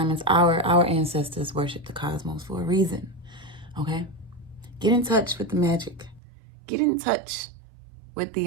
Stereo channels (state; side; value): drops out; left; at 6.2 s